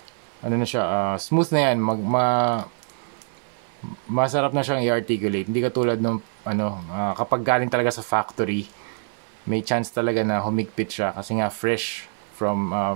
ano na siya, smooth na yan. Masarap na siyang i-articulate. Hindi katulad nung, kapag galing talaga sa factory, may chance talaga na humigpit siya. Kasi nga, fresh from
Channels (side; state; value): left; silent; 57 dB below the other